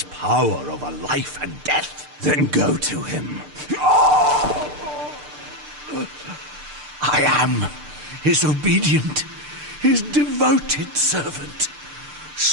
power over life and death. Then go to him. I am his obedient, his devoted servant.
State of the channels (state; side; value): late; left; 6.7 ms